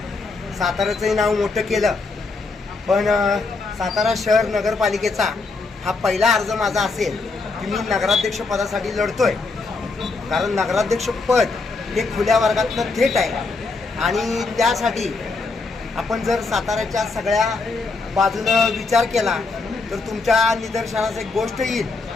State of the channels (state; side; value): quieter; right; 3.9 dB